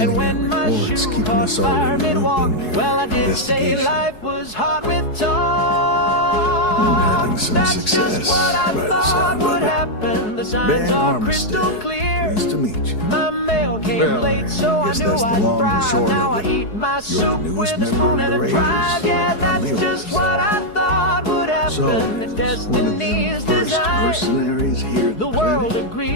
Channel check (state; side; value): late; right; 4.7 ms